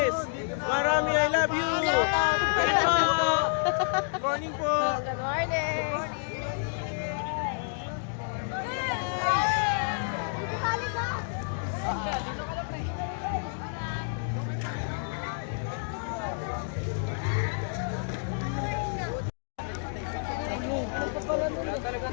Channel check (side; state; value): right; silent; digital silence